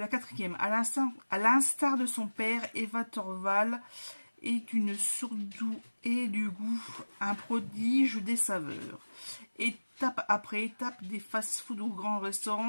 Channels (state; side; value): inverted; both; correlation -1.00